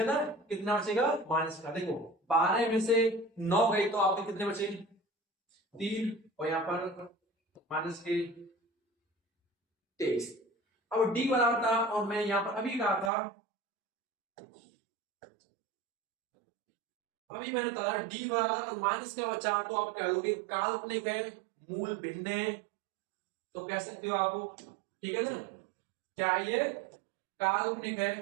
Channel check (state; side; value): drops out; left; at 13.1 s